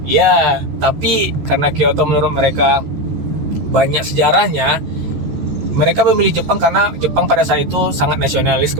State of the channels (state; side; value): late; left; 14 ms